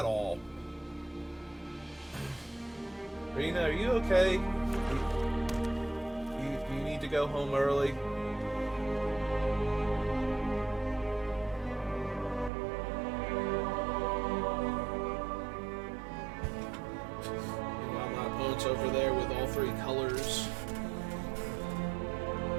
all. Arena, are you okay? You need to go home early? Meanwhile, my opponent's over there with all 3 colors.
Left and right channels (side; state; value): left; drops out; at 12.5 s